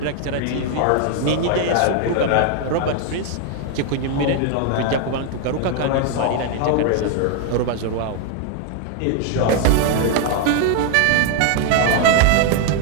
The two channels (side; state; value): both; different; correlation 0.01